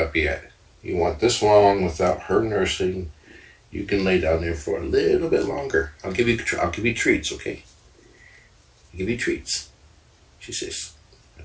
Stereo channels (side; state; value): both; identical; correlation 1.00